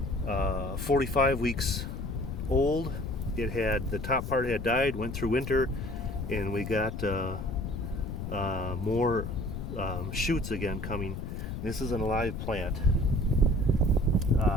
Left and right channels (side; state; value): left; noise; rumble, 6 dB below the sound